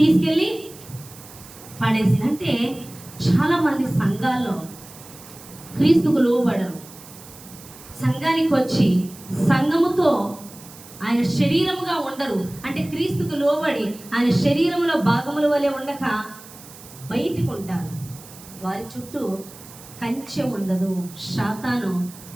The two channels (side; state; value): right; noise; hiss, 19 dB below the sound